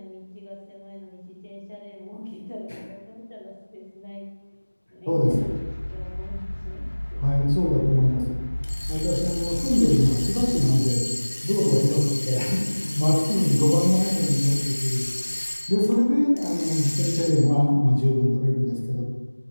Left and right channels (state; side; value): inverted; both; correlation -1.00